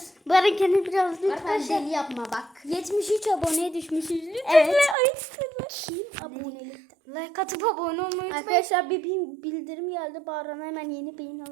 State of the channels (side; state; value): left; drops out; at 5.0 s